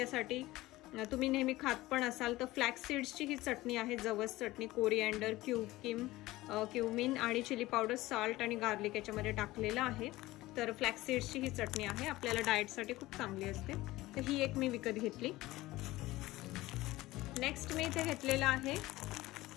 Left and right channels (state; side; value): quieter; right; 18.2 dB